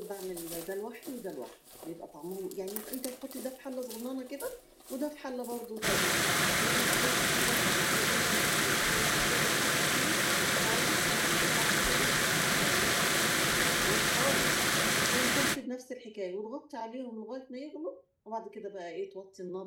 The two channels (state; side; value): identical; both; correlation 1.00